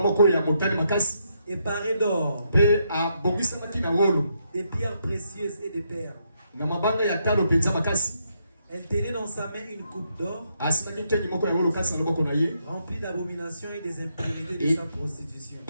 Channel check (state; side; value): inverted; both; correlation -0.77